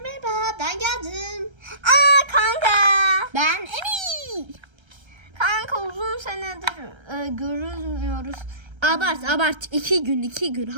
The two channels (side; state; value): left; late; 1.3 ms